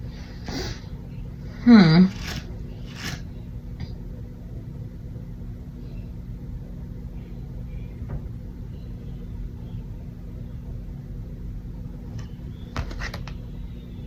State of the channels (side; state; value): both; identical; correlation 1.00